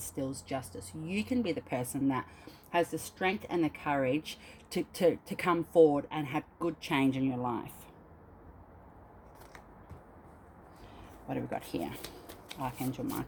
justice. You can be the person that has the strength and the courage to come forward and have good change in your life. What have we got here? Archangel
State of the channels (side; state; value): both; identical; correlation 1.00